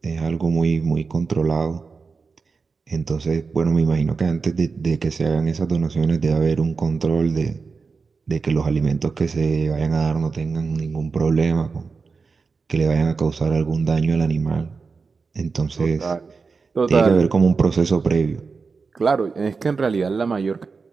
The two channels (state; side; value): quieter; left; 4.7 dB